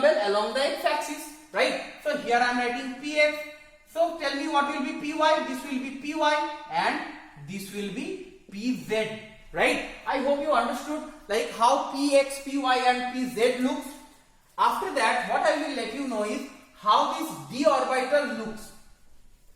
along the x axis, right? So here I am writing px. So tell me what will be py? This will be py and this will be pz, right? I hope you understood how px, py and pz looks. After that, what I will let you know is how this d orbital looks.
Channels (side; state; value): both; identical; correlation 1.00